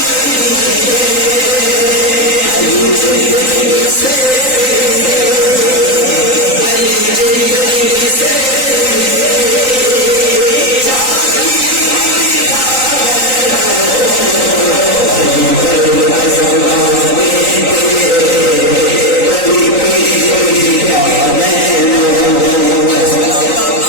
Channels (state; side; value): late; right; 3.9 ms